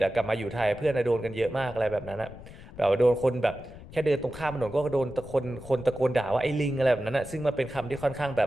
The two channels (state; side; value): noise; left; rumble, 16 dB below the sound